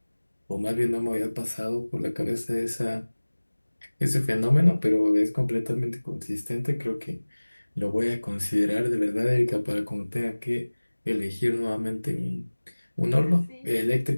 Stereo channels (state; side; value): inverted; both; correlation -1.00